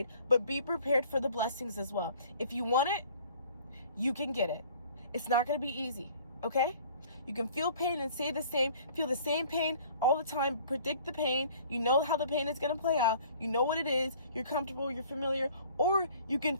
but be prepared for the blessings as well. If you want it, you can get it. It's not going to be easy, okay? You can feel pain and feel the same pain all the time, predict the pain. You know how the pain is going to play out. You know what it is. You're comfortable, you're familiar. Or you can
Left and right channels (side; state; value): both; inverted; correlation -0.52